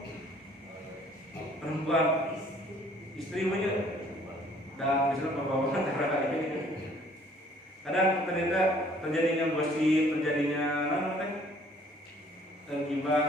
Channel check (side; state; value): both; normal; correlation 0.58